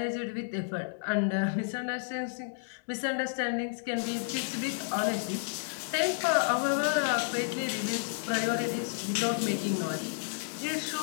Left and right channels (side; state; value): right; silent; digital silence